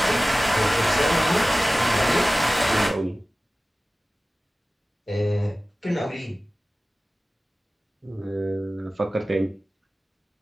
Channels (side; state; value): both; normal; correlation 0.97